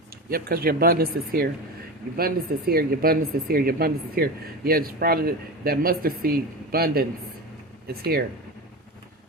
Yep, because your abundance is here. Your abundance is here. Your abundance is here. Your abundance is here. Yeah, it's probably that mustard seed abundance is here.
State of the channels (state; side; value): normal; both; correlation 0.25